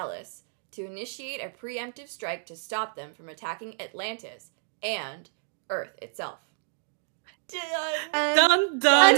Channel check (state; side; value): silent; left; digital silence